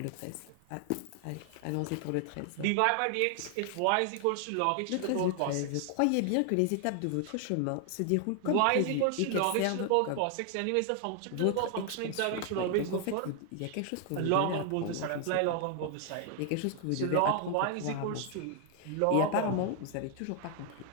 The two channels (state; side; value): different; both; correlation 0.00